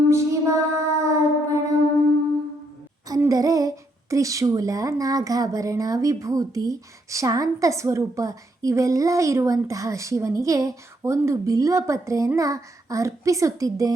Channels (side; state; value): both; normal; correlation 0.75